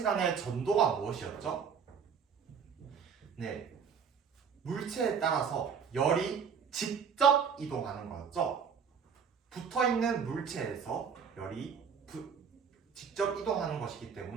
전도가 무엇이었죠? 네, 물체에 따라서 열이 직접 이동하는 거였죠. 붙어있는 물체에서 열이 직접 이동하는 것이기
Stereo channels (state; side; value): quieter; left; 6.7 dB